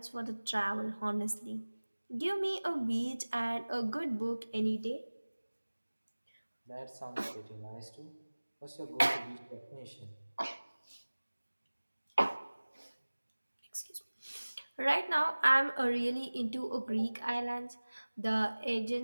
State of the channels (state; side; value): inverted; both; correlation -1.00